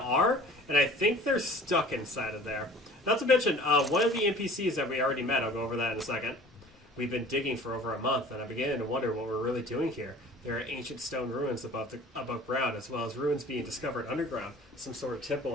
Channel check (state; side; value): normal; both; correlation 0.46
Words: are, and I think they're stuck inside of there. Not to mention, one of the NPCs that we already met, I'll go over that in a second. We've been digging for over a month, and I'm beginning to wonder what we're really doing here. There are ancient stone ruins above ground, as well as ruins being discovered underground. Some sort of